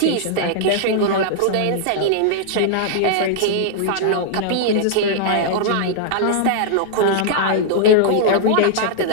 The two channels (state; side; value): different; both; correlation -0.01